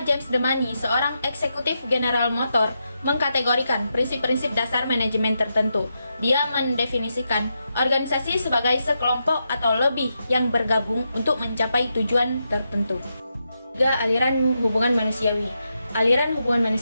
James Demany, seorang eksekutif General Motors, mengkategorikan prinsip-prinsip dasar manajemen tertentu. Dia mendefinisikan organisasi sebagai sekelompok atau lebih yang bergabung untuk mencapai tujuan tertentu. 3. Aliran hubungan manusiawi. Aliran hubungan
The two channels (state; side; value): inverted; both; correlation -0.85